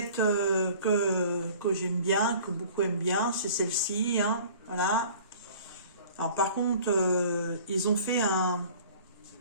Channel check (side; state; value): both; inverted; correlation -0.47